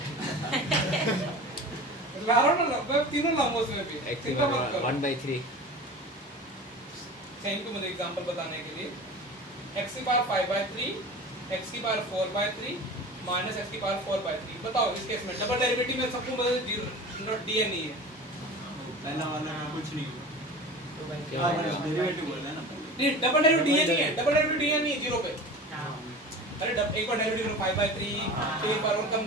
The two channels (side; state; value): both; normal; correlation 0.35